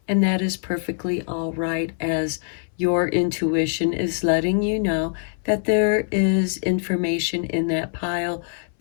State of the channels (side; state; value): right; silent; 63 dB below the other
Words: and that is perfectly all right, as your intuition is letting you know that there is information in that pile